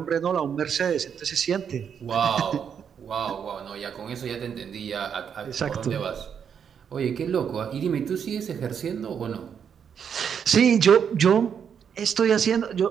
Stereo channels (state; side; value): quieter; left; 7.6 dB